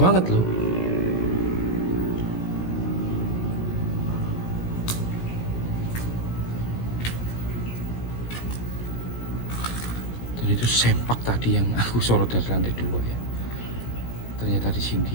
loh. Dan itu sempak tadi yang aku sorot dari lantai 2 ya. Ternyata di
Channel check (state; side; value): late; right; 17 ms